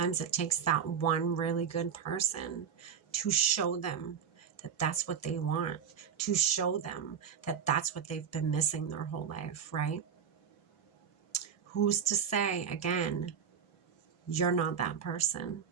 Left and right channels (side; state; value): left; quieter; 7.6 dB